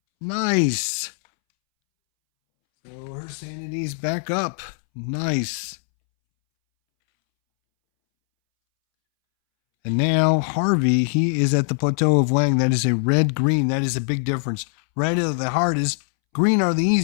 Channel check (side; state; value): right; silent; 65 dB below the other